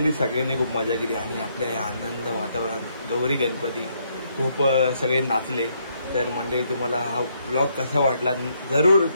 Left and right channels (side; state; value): both; inverted; correlation -0.73